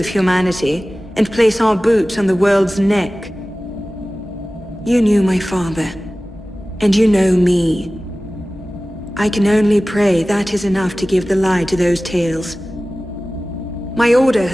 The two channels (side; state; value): both; normal; correlation 0.97